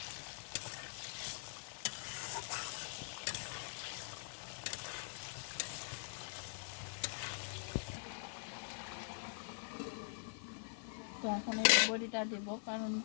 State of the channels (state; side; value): silent; right; digital silence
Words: তো এখন এই বড়িটা দেব, কারণ